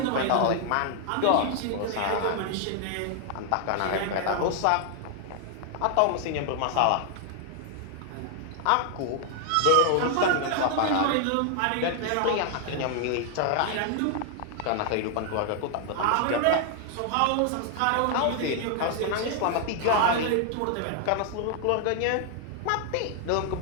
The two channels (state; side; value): different; both; correlation 0.00